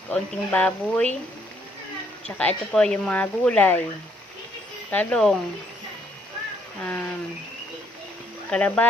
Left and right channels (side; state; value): both; normal; correlation 0.69